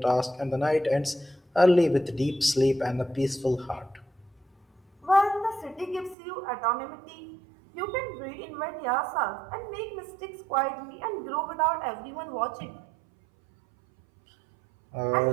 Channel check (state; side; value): drops out; left; at 6.2 s